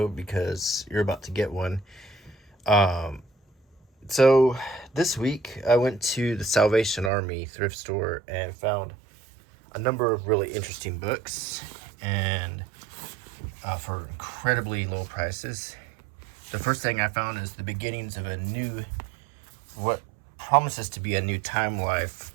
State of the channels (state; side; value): drops out; left; at 7.1 s